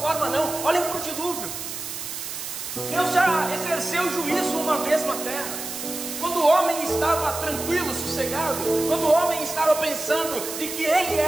não. Olhem para o dilúvio. Deus já exerceu juízo uma vez na terra. Quando quando o homem estava tranquilo, sossegado, quando o homem estava pensando de que ele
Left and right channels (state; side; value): noise; right; hiss, 7 dB below the sound